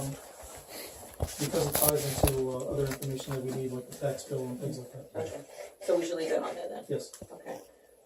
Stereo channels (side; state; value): both; identical; correlation 1.00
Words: because it ties into other information that we need, like the tax bill and things like that. Okay, so we should leave it on there then? Yes. Okay.